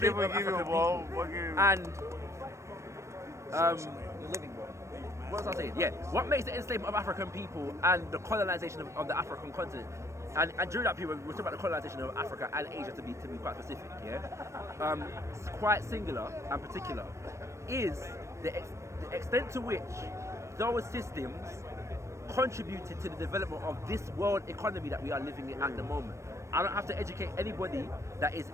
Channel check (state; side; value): late; left; 0.14 ms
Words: of give you a African ball. people Give you. and You're living, bro. what was I saying? Yeah, what makes the enslavement of African people and the colonization of the African continent, and during that period, we're talking about the colonization of Africa and Asia to be quite specific, yeah, quite singular and particular, is the extent to which those systems contributed to the development of this world economy that we are living in at the moment. I don't have to educate anybody that is